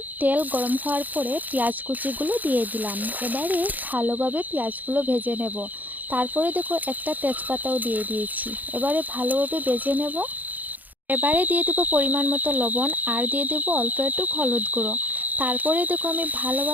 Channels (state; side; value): late; left; 0.082 ms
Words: তেল গরম হওয়ার পরে পেঁয়াজ কুচিগুলো দিয়ে দিলাম। এবারে ভালোভাবে পেঁয়াজগুলো ভেজে নেব। তারপরে একটা তেজপাতাও দিয়ে দিয়েছি। এবারে ভালোভাবে ভেজে নেব। এবারে দিয়ে দেব পরিমাণ মতো লবণ আর দিয়ে দেব অল্প একটু হলুদ গুঁড়ো। তারপরে আমি